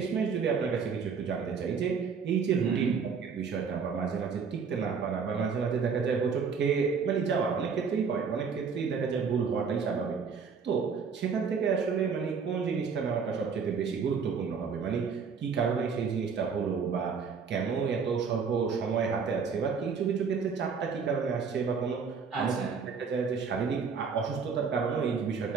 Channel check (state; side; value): quieter; left; 5.8 dB